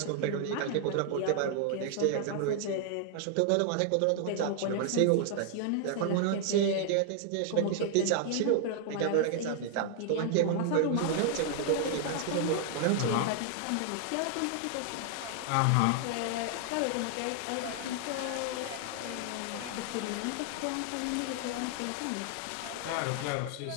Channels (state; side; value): different; both; correlation -0.01